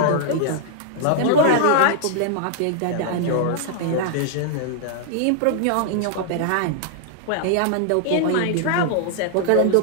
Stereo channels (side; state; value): both; different; correlation -0.01